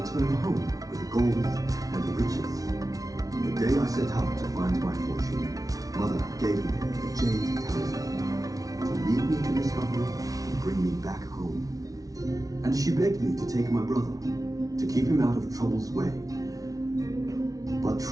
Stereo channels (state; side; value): late; left; 0.18 ms